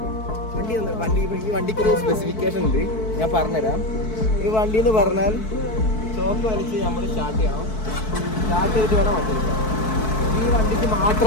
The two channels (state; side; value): late; right; 4.6 ms